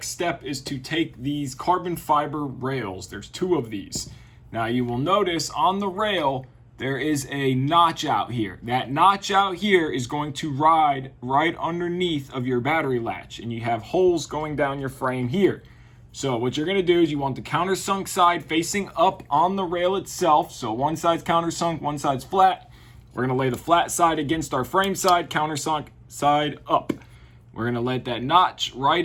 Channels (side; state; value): both; identical; correlation 1.00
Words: step is to take these carbon fiber rails. There's 2 of these. Now you will notice on the rail, there is a notch out here. That notch out here is going to ride right underneath of your battery latch, and you have holes going down your frame here. So what you're gonna do is you want the countersunk side facing up on the rail itself. So one side's countersunk, one side's flat. We're gonna lay the flat side against our frame side, countersunk side up. We're gonna let that notch